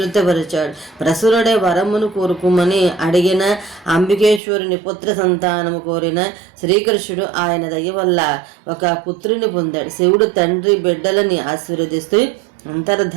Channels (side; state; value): left; drops out; at 4.4 s